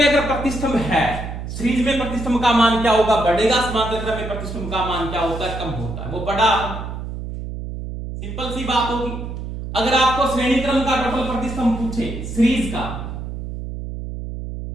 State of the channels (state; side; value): noise; right; hum, 7 dB below the sound